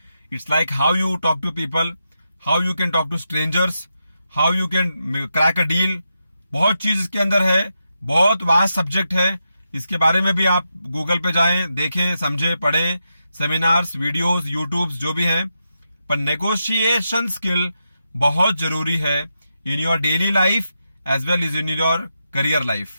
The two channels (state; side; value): inverted; both; correlation -0.86